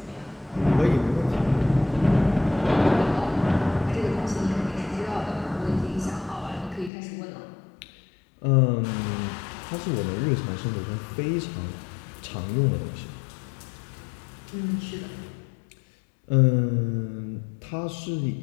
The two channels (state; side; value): drops out; right; at 6.9 s